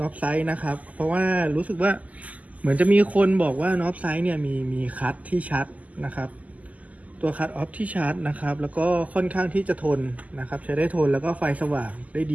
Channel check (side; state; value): left; late; 0.075 ms